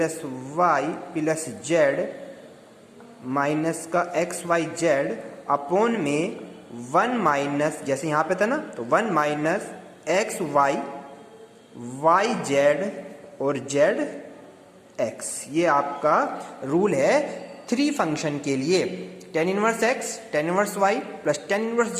y plus z minus का एक्स वाई जेड अपॉन में 1 माइनस, जैसे यहाँ पे था ना, तो 1 minus x y y z और जेड एक्स। ये आपका रूल है 3 फंक्शन के लिए, tan inverse x, tan inverse y plus tan inverse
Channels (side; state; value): both; identical; correlation 1.00